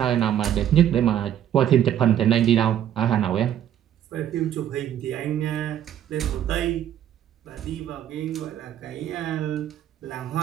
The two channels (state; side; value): quieter; left; 10.6 dB